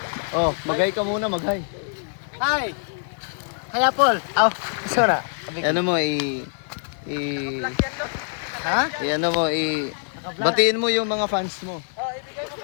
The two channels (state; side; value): silent; right; digital silence